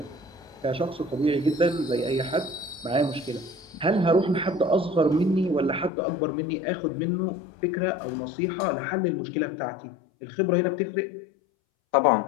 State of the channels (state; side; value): drops out; right; at 5.9 s